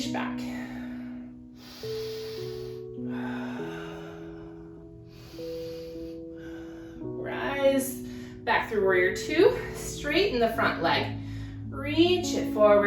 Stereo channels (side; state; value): both; identical; correlation 1.00